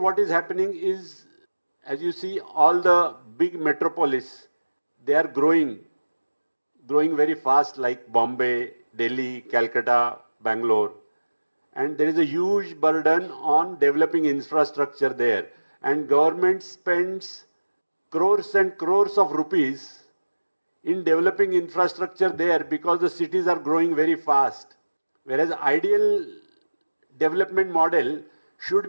is happening is, as you see, all the big metropolis, they are growing very fast, like Bombay, Delhi, Calcutta, Bangalore. And there is a huge burden on developing infrastructure there. And government spends crores and crores of rupees in developing infrastructure there because the cities are growing very fast. Whereas ideal development model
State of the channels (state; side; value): inverted; both; correlation -1.00